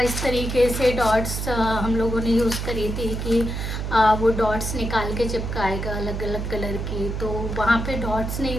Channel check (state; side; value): noise; right; hum, 4 dB below the sound